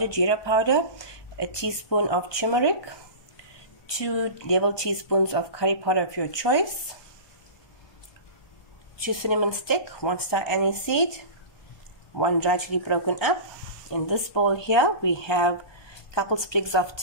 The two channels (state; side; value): late; right; 1.2 ms